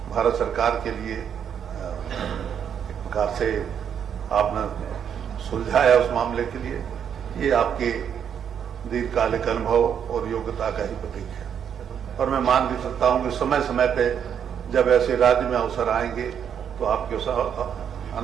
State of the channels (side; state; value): left; quieter; 8.3 dB